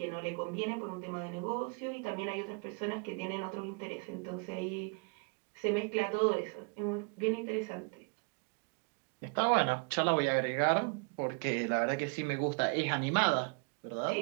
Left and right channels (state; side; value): quieter; left; 35.3 dB